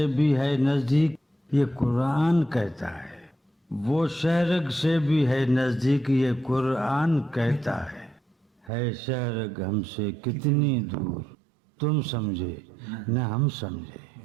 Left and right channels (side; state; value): left; drops out; at 8.7 s